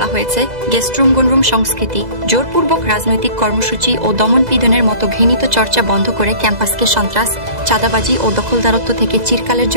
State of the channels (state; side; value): late; left; 2.0 ms